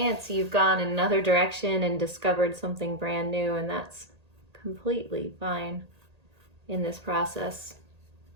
you've gone in another direction and discovered something brand new, and that's completely fine in this process.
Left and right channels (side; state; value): left; late; 1.8 ms